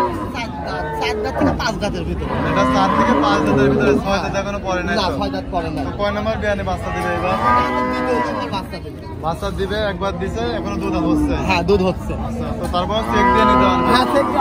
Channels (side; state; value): both; identical; correlation 1.00